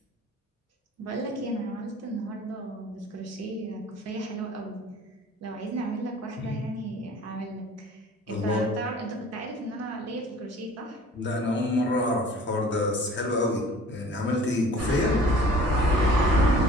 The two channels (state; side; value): normal; both; correlation 0.48